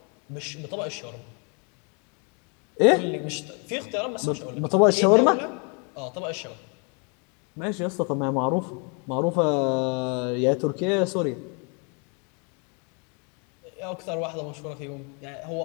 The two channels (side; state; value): right; quieter; 35.7 dB